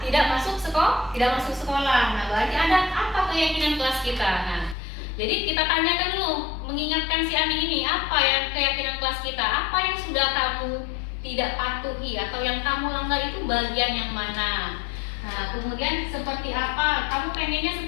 tidak masuk sekolah. Nah, berarti ada apa keyakinan kelas kita? Nah, jadi kita tanyakan dulu, mengingatkan si Andi ini, apa yang keyakinan kelas kita, apa yang sudah kamu tidak patuhi atau yang kamu langgar itu bagian yang mana? Nah, kemudian seperti apa, kamu pengennya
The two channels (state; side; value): drops out; right; at 4.8 s